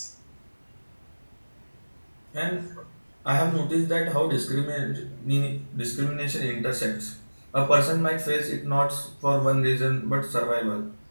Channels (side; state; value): both; inverted; correlation -1.00